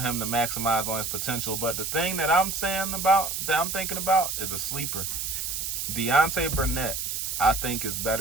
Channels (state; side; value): noise; right; hiss, 3 dB below the sound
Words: to maximize on his potential. But the thing that I'm thinking about is a sleeper. Deontay Burnett, I think, is